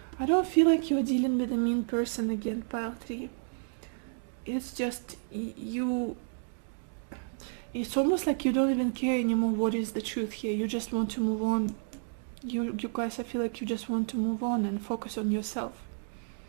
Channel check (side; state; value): left; silent; digital silence